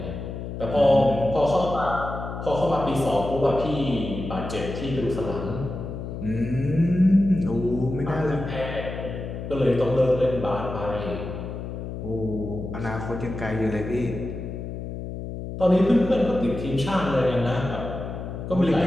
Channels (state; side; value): noise; left; hum, 7 dB below the sound